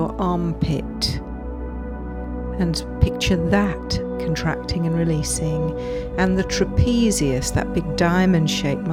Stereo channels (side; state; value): both; identical; correlation 1.00